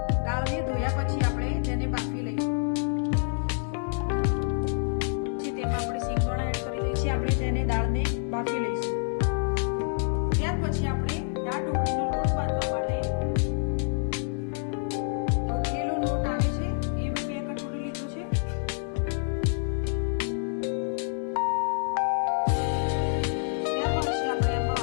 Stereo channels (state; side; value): silent; right; 60 dB below the other